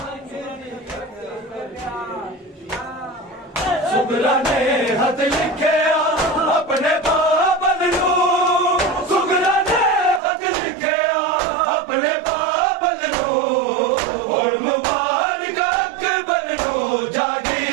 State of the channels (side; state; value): left; drops out; at 10.2 s